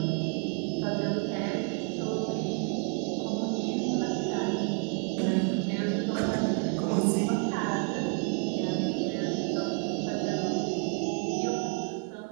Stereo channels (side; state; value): left; quieter; 36.3 dB